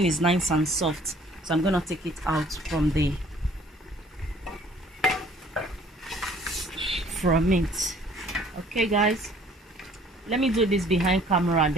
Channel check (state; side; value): normal; both; correlation 0.56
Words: is nice and soft. So I'm gonna take it out from it. Okay guys, let me do this behind camera and